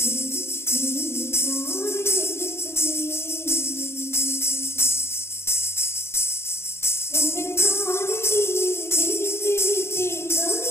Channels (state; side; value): late; right; 0.12 ms